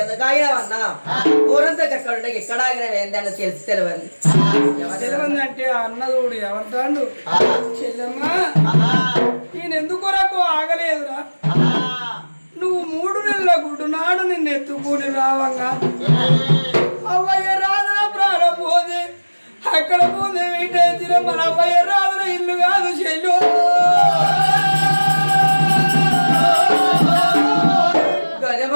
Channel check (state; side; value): inverted; both; correlation -1.00